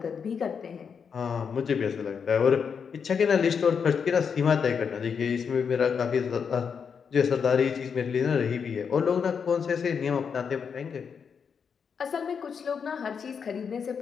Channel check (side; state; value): right; quieter; 6.5 dB